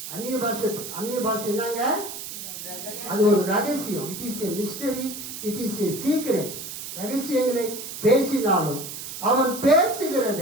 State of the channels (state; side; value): noise; right; hiss, 9 dB below the sound